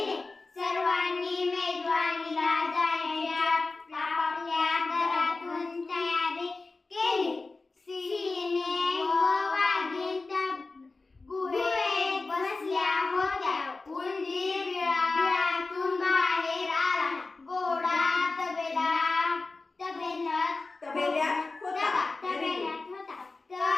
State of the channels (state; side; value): quieter; right; 3.6 dB